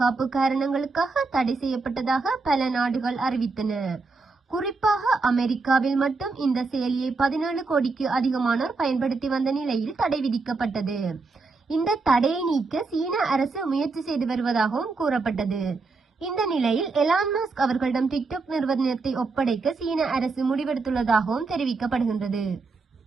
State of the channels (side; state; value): left; quieter; 4.0 dB